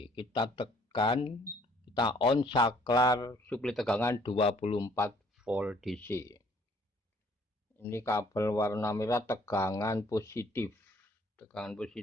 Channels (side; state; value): both; normal; correlation 0.61